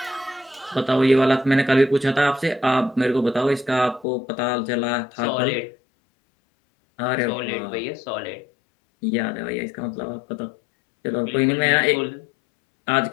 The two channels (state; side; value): drops out; right; at 4.0 s